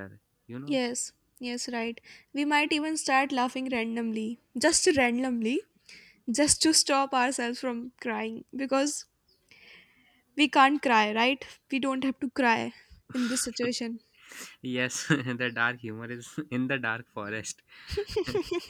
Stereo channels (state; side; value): identical; both; correlation 1.00